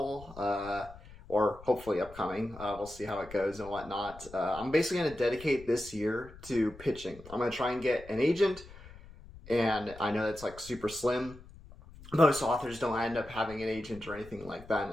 or hopefully upcoming. We'll see how it goes and whatnot. I'm basically going to dedicate this year to pitching. I'm going to try and get an agent, and I know that's like super slim. Most authors don't end up having an agent or anything like that,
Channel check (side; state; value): left; noise; rumble, 18 dB below the sound